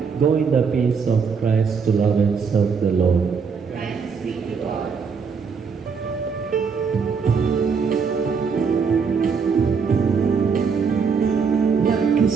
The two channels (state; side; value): quieter; left; 5.7 dB